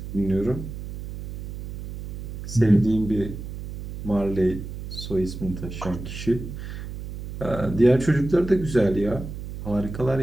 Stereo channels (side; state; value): right; noise; hum, 9 dB below the sound